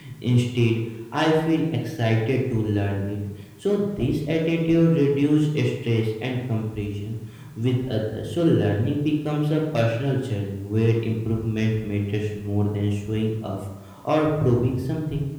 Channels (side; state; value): both; identical; correlation 1.00